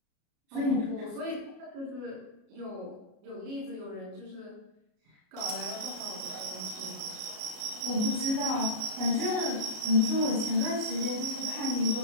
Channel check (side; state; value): left; late; 33 ms